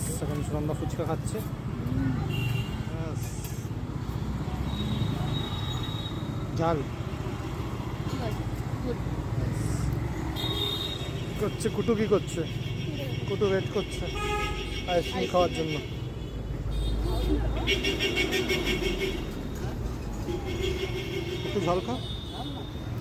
এখন সুনন্দা ফুচকা খাচ্ছে। ঝাল কি করছে কুটু? কি করছে কুটু? ওয়েট করছে আইসক্রিম খাওয়ার জন্য। একটু ঝাল খা,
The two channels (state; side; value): identical; both; correlation 1.00